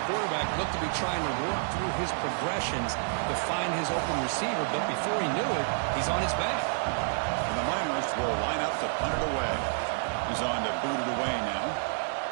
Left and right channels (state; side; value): silent; left; digital silence